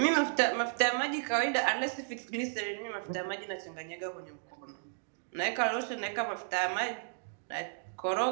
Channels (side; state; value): left; silent; digital silence